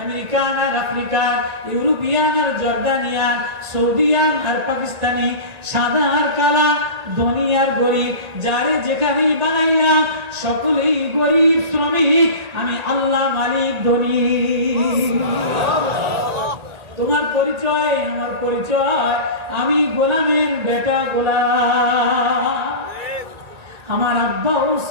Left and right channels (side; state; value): left; late; 1.9 ms